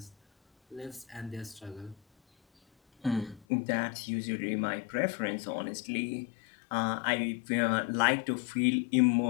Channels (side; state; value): right; drops out; at 3.5 s